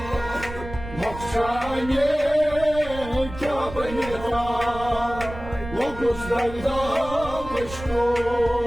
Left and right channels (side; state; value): right; noise; rumble, 12 dB below the sound